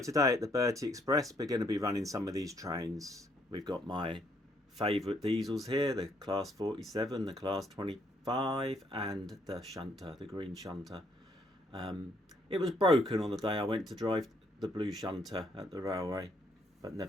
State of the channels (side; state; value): both; normal; correlation 0.69